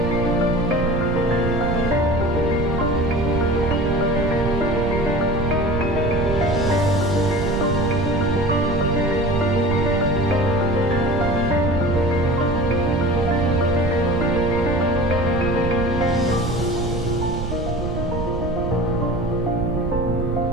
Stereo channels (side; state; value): right; noise; rumble, 4 dB below the sound